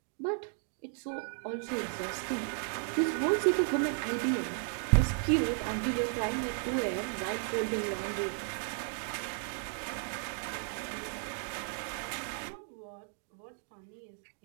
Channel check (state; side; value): silent; left; 55 dB below the other